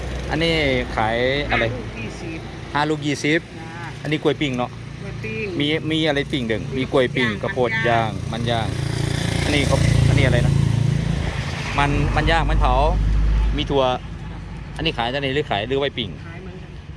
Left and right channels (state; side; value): identical; both; correlation 1.00